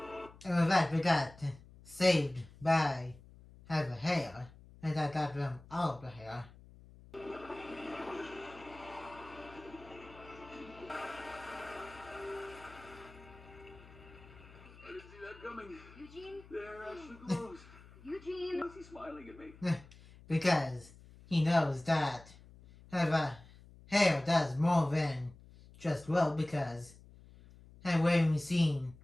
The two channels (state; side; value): noise; left; hum, 21 dB below the sound